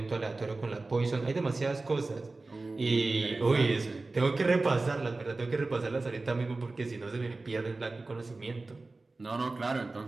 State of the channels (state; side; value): quieter; left; 3.4 dB